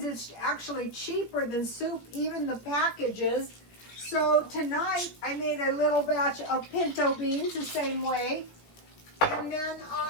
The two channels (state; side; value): late; right; 17 ms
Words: it's actually cheaper than soup, even the packages. So tonight I made a little batch of pinto beans the same way. And then